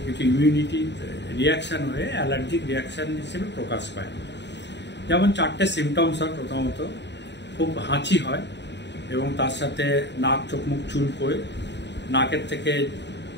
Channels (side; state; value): right; late; 0.51 ms